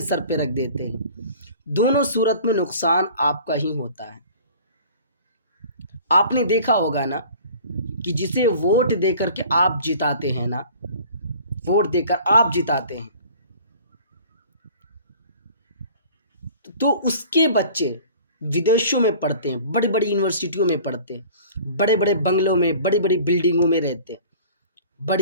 सर पे रख देते हैं। दोनों सूरत में नुकसान आपका ही होता है। आपने देखा होगा ना कि जिसे वोट देकर के आप जिताते हैं ना, वोट देकर आप जिताते हैं, तो उसके बच्चे विदेशों में पढ़ते हैं, बड़ी बड़ी यूनिवर्सिटियों में पढ़ते हैं, बड़े बड़े बंगलों में, बड़ी बड़ी बिल्डिंगों में रहते हैं,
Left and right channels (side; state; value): both; inverted; correlation -0.46